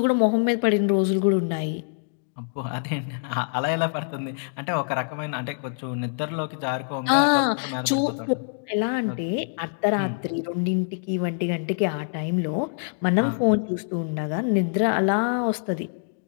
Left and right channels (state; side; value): silent; right; digital silence